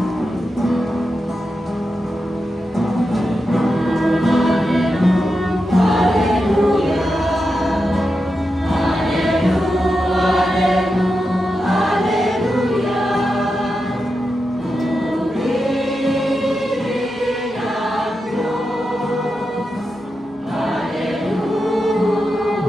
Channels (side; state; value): both; normal; correlation 0.89